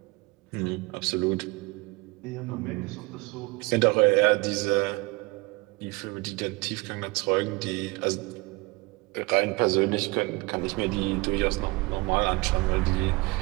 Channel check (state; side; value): quieter; left; 24.6 dB